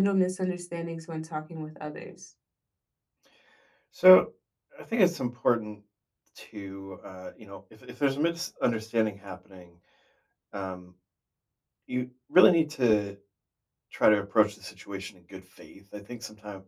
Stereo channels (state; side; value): identical; both; correlation 1.00